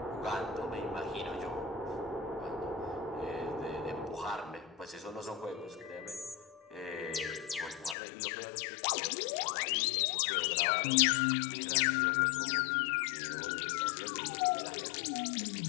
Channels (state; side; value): drops out; right; at 8.0 s